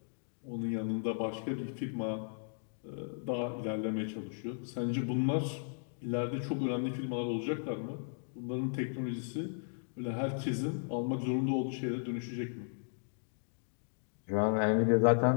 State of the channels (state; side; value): silent; right; digital silence